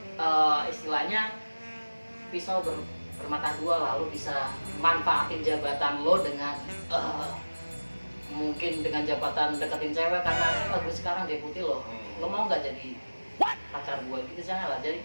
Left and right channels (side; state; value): both; inverted; correlation -1.00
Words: istilahnya pisau bermata dua, lalu bisa manfaatin jabatan lo dengan mungkin dengan jabatan deketin cewek karena gue sekarang deputi lo mau nggak jadi pacar gue gitu, jangan lah. Jadi